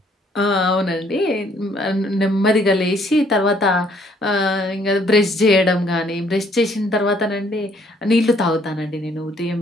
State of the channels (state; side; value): normal; both; correlation 0.64